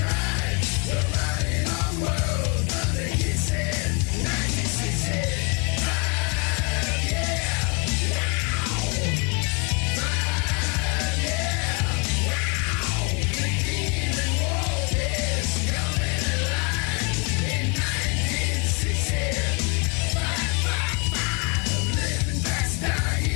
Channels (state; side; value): quieter; right; 31.6 dB